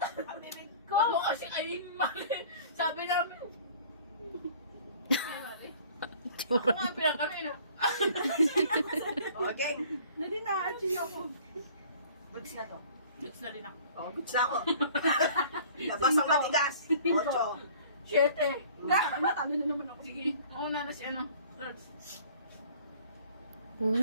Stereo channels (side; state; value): both; inverted; correlation -0.50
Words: Ako kasi ay mali. Sabi namin. Ako nga pinakano yun. Okay. Nadi na, achieve ako. Goods na to. Goods na rin ako. Oh, goods na ako. Labas ang matigas. 8. 7. Natalo na naman ako. Sige, mauna na si ano. Lords. Uy,